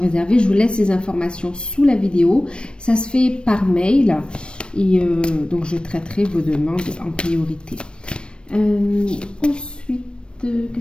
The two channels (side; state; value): right; late; 0.056 ms